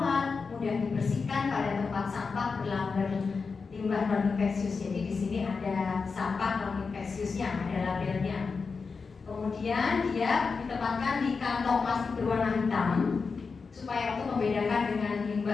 mudah didistribusikan pada tempat sampah berlamber limbah non-infeksius. Jadi di sini ada sampah non-infeksiusnya, ada labelnya. Kemudian dia ditempatkan di kantong plastik berwarna hitam supaya untuk membedakan dengan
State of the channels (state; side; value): quieter; right; 4.9 dB